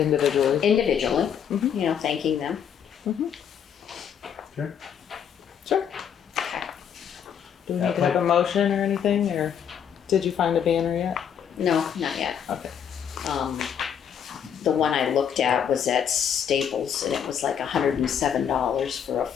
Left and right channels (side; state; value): right; quieter; 8.3 dB